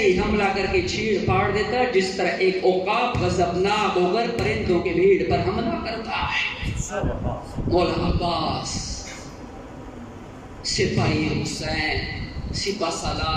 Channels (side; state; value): both; identical; correlation 1.00